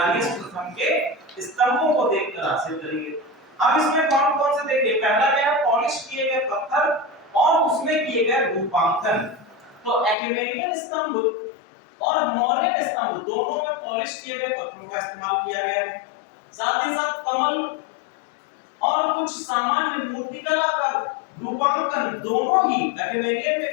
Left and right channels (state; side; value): drops out; right; at 10.2 s